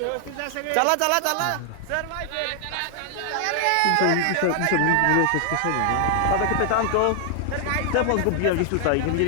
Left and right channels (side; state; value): both; different; correlation 0.00